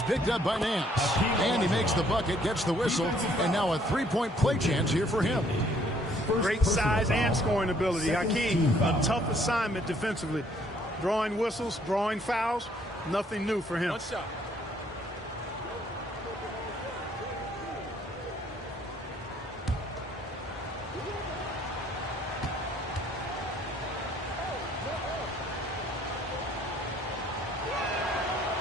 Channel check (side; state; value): both; normal; correlation 0.64